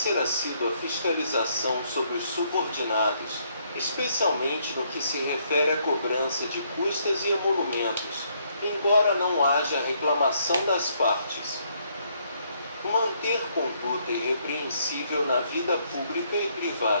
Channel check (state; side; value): inverted; both; correlation -0.71